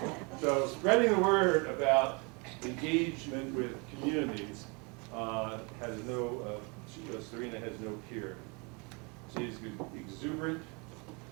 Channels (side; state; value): left; quieter; 31.0 dB